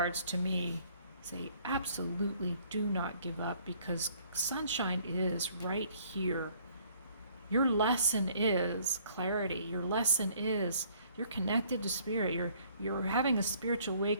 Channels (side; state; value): both; inverted; correlation -0.61